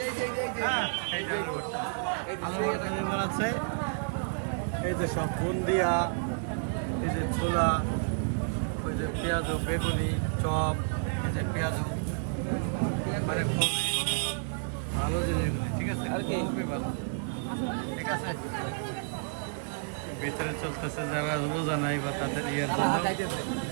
হ্যাঁ, এইটা আলু ভর্তা। আলু ভর্তা কি বানাচ্ছে? এই যে সব বুন্দিয়া, এই যে ছোলা, ওই যে পেঁয়াজু, বেগুনি, চপ, এই যে পেঁয়াজু, মানে খুবই ভালো জিনিসগুলো। ঠিক আছে, খুবই ভালো। ঠিক আছে, ভিতরে চলতেছে যারা রোজা নাই বা তাদের ইয়ের জন্য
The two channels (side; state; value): left; silent; digital silence